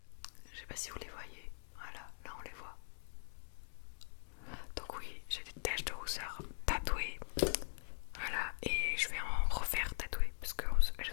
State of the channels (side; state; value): right; silent; digital silence